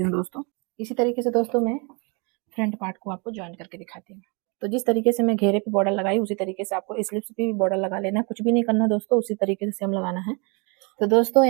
हूँ दोस्तों। इसी तरीके से दोस्तों मैं फ्रंट पार्ट को आपको ज्वाइन करके दिखाती हूँ। तो जिस तरीके से मैं घेरे पे बॉर्डर लगाई, उसी तरीके से आपको स्लिप्स पे भी बॉर्डर लगा लेना है। कुछ भी नहीं करना दोस्तों, उसी तरीके से सेम लगाना है। तो दोस्तों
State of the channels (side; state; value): left; quieter; 32.1 dB